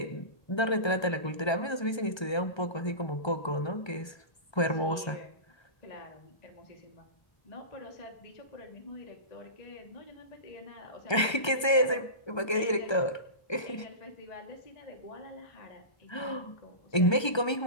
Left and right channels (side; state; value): right; late; 1.3 ms